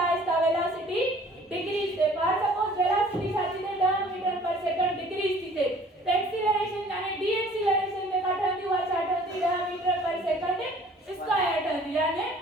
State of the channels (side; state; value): both; normal; correlation 0.52